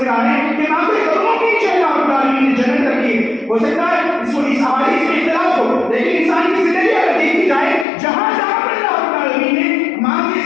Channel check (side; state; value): right; drops out; at 7.9 s